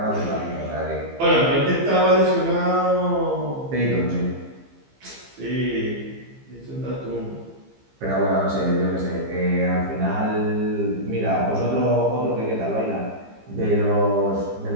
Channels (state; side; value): late; left; 15 ms